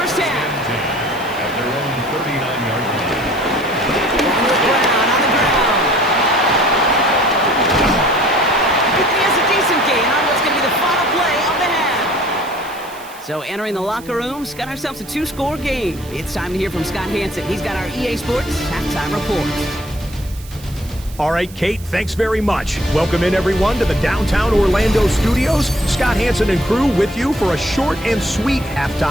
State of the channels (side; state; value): right; noise; hiss, 20 dB below the sound